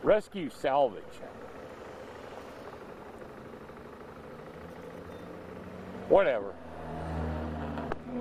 Rescue salvage. Whatever.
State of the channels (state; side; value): identical; both; correlation 1.00